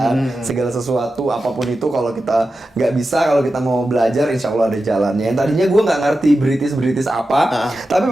Segala sesuatu apapun itu kalau kita nggak bisa, kalau kita mau belajar insya Allah ada jalannya. Yang tadinya gue nggak ngerti British apa, tapi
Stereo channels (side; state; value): both; normal; correlation 0.92